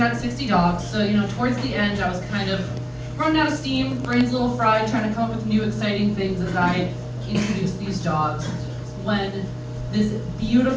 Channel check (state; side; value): identical; both; correlation 1.00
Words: 60 dogs, so towards the end, I was kind of running out of steam, brains a little fried, trying to come up with new exciting things as I introduced these dogs. When this